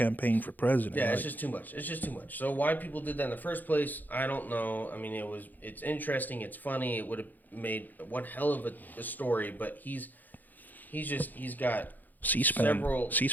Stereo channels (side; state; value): right; late; 0.085 ms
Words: for president. Yeah, it's just too much. It's just too much. So why people did that in the first place, I don't know. I mean, it's interesting. It's funny. It would have made one hell of a story, but he's got